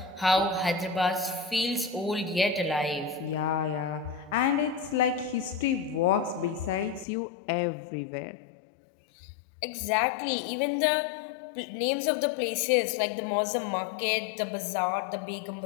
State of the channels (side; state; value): right; drops out; at 7.1 s